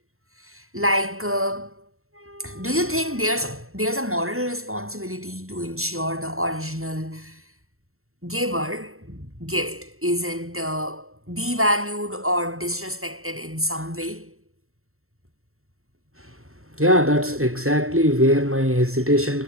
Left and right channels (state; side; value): late; left; 0.62 ms